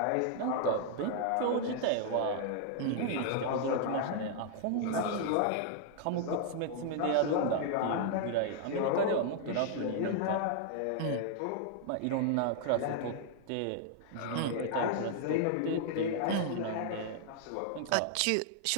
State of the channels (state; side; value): different; both; correlation -0.01